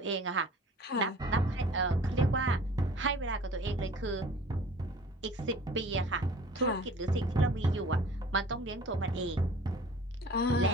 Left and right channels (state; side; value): normal; both; correlation 0.47